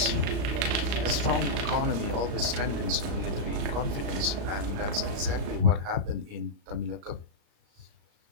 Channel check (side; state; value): left; late; 35 ms